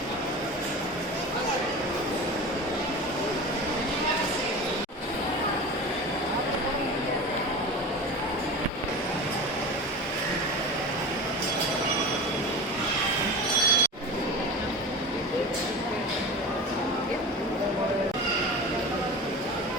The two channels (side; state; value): both; normal; correlation 0.31